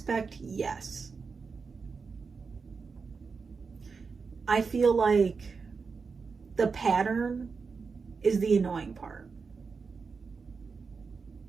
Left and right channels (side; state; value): left; quieter; 5.0 dB